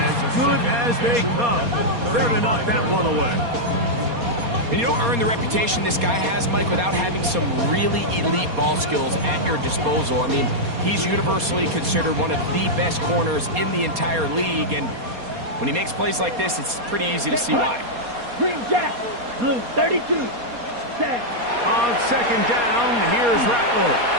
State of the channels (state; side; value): late; left; 4.2 ms